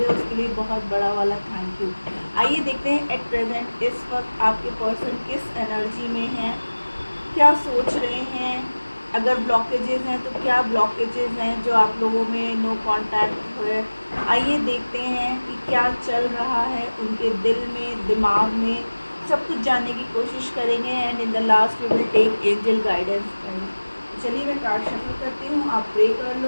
हो, उसके लिए बहुत बड़ा वाला थैंक यू। आइए देखते हैं एट प्रेजेंट इस वक्त आपके पर्सन किस एनर्जी में है, क्या सोच रहे हैं। अगर ब्लॉकेजेस हैं तो क्या ब्लॉकेजेस हैं जो आप लोगों में नो कांटेक्ट हुए। आइए देखते हैं कि क्या चल रहा है उनके दिल में, दिमाग में, सब कुछ जानने की कोशिश करेंगे। And in the last we will take angel guidance. चलिए मैं कार्ड शफल करती हूँ, आप प्रे कर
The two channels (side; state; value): both; inverted; correlation -1.00